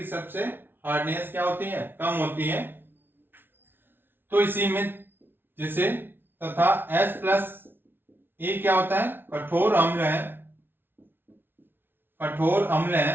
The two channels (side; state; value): left; late; 0.10 ms